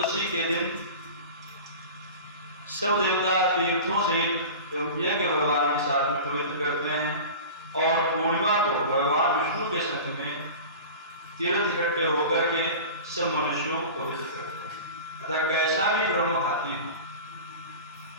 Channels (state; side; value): inverted; both; correlation -0.35